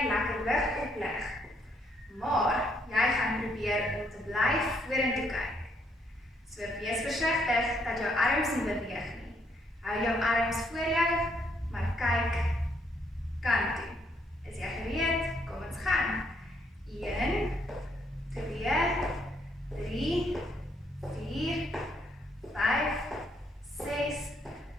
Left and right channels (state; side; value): normal; both; correlation 0.72